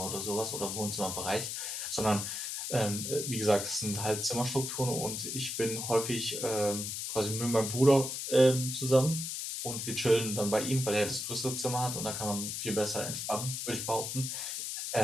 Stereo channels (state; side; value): noise; left; hiss, 4 dB below the sound